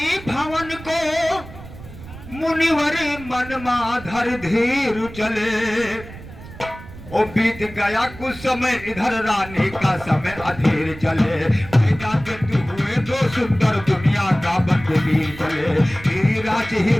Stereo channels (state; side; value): noise; right; rumble, 15 dB below the sound